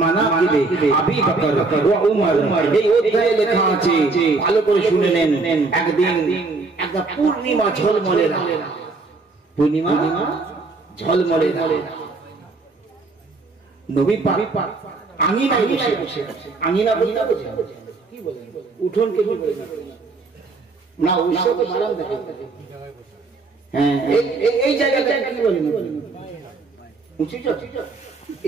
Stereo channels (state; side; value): quieter; left; 3.8 dB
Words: আবি বকর ওয়া উমর এই অধ্যায়ে লেখা আছে ভালো করে শুনে নেন একদিন একটা পূর্ণিমা ঝলমলে রাত পূর্ণিমা ঝলমলে রাত নবী পাক আঙিনায় বসে আঙিনা বলতে কি বলেন উঠোন কে কি বলেন না ওইসব তো মারাম দেখে হ্যাঁ এই জায়গাটা কি বলেন উঁচু